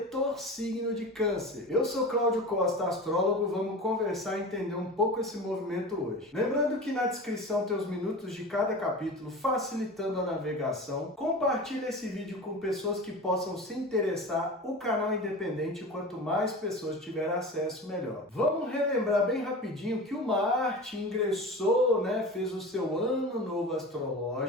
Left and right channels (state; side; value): normal; both; correlation 0.32